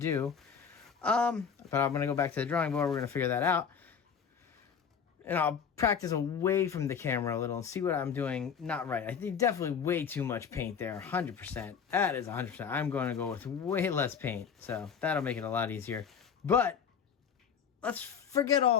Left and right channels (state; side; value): quieter; right; 7.0 dB